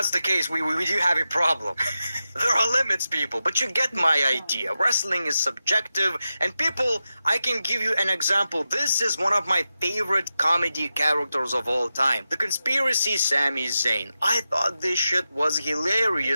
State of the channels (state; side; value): inverted; both; correlation -0.91